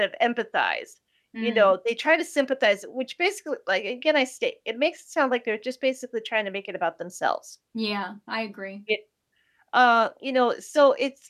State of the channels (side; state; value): both; identical; correlation 1.00